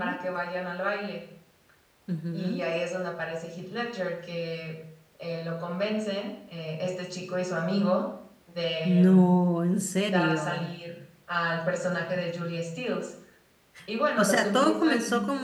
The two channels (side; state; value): both; identical; correlation 1.00